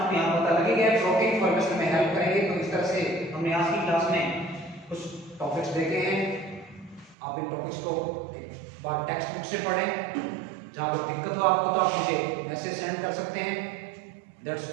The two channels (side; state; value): left; drops out; at 7.2 s